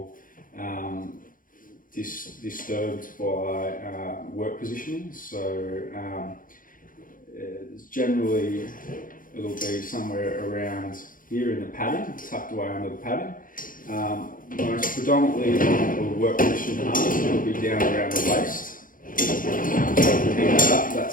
disturbed by work positioning. So generally it'll be somewhere around here in the padding, tucked away under the padding. Most predominantly on the work position harness, it'll be down around the waist. So if you hang that up,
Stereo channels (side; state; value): right; late; 0.40 ms